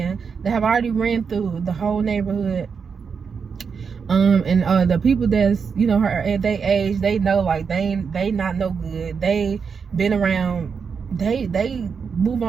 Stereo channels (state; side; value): quieter; left; 5.9 dB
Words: that have already ran through the whole neighborhood, and the people that's her at their age, they know, like, they not no good. They been around. They move